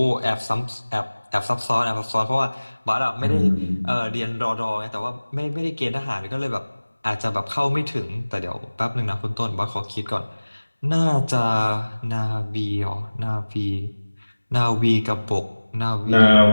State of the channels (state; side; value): inverted; both; correlation -1.00